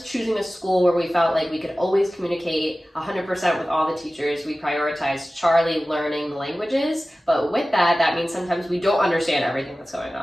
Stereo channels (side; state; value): both; normal; correlation 0.96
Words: choosing a school where we felt like we could always communicate 100% with all the teachers, we prioritized Charlie learning the languages. But with that, that means sometimes we don't understand everything that's going